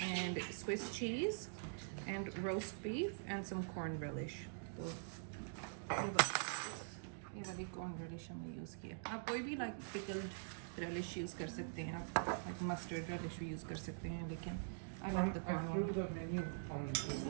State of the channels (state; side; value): silent; left; digital silence